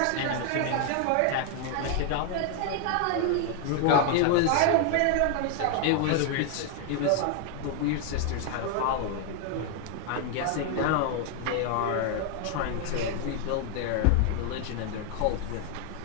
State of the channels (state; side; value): different; both; correlation 0.01